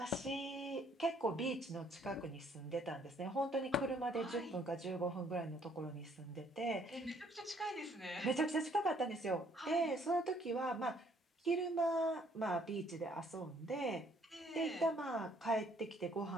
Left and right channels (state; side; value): normal; both; correlation 0.64